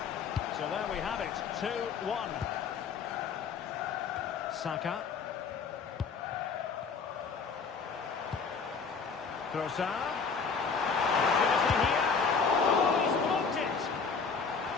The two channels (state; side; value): quieter; right; 5.4 dB